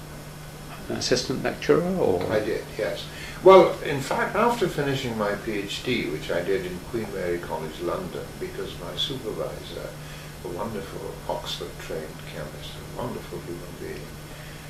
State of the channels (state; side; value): identical; both; correlation 1.00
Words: assistant lecturer, or? I did, yes. Well, in fact, after finishing my PhD, which I did in Queen Mary College, London, because my supervisor, a wonderful Oxford-trained chemist, a wonderful human being,